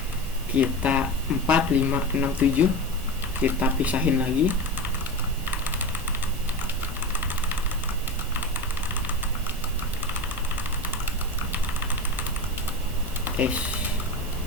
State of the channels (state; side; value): normal; both; correlation 0.24